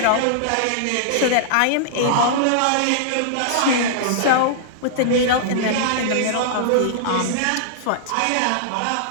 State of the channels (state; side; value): different; both; correlation -0.01